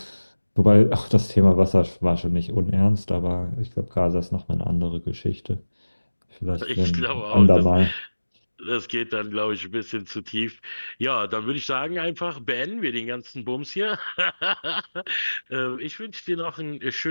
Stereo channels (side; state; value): both; inverted; correlation -1.00